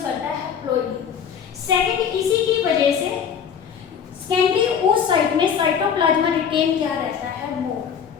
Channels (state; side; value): quieter; right; 7.5 dB